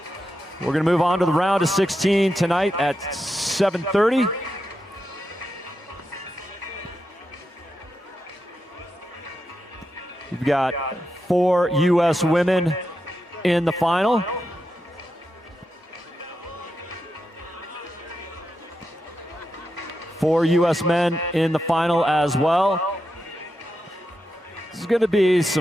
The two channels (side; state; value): both; normal; correlation 0.87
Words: We're going to move on to the round of 16 tonight at 7:30. We've got 4 U.S. women in the final. Four U.S. men in the final as well. This is going to be